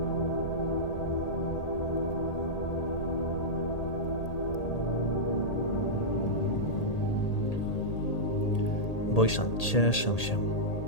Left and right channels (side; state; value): right; late; 1.8 ms